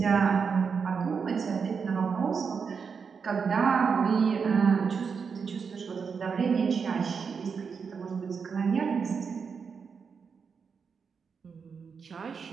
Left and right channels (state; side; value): quieter; left; 5.9 dB